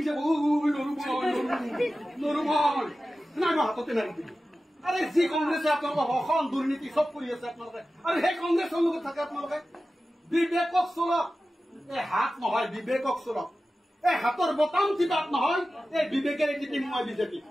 যাব নৰুমল নাই মই হাততে নাৰি দিলো আৰে যি কংগ্ৰেছে আপোনালোকৰ অসম দুৰ্নীতি চব কৰি আছে আপোনালোকে আৰু সেই কংগ্ৰেছৰ লগত থাকে আপোনালোকে বিবেকক চলক এই হাত নহয় বিবেকক চলক এই হাতৰ বটাম টিপাত নহয় এই বিবেকেৰে টিপিম মই বিজেপি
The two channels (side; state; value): both; normal; correlation 0.94